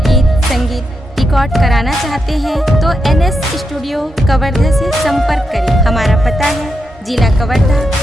गीत संगीत रिकॉर्ड कराना चाहते हैं तो NS स्टूडियो कवर्धा से संपर्क करें। हमारा पता है जिला कवर्धा,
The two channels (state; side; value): normal; both; correlation 0.85